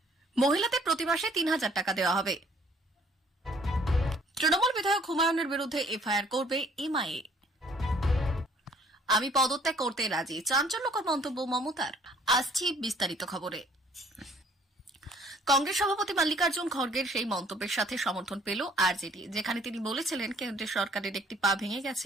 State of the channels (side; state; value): both; normal; correlation 0.59